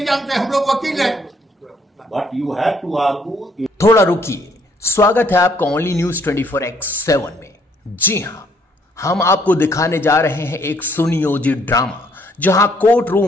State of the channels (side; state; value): both; normal; correlation 0.67